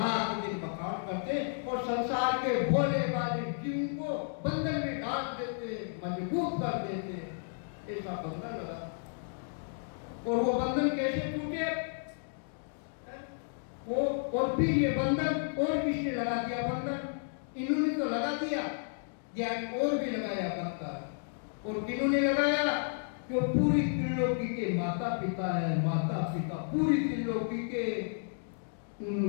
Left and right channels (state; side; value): silent; right; digital silence